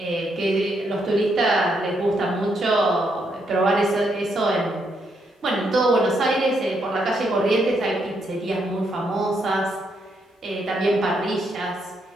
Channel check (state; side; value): normal; both; correlation 0.77